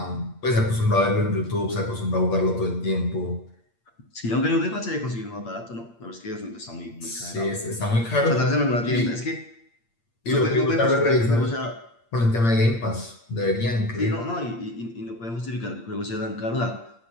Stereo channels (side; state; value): right; late; 8.7 ms